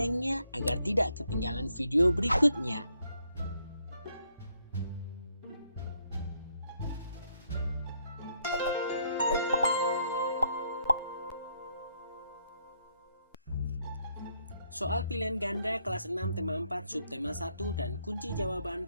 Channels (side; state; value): both; inverted; correlation -0.74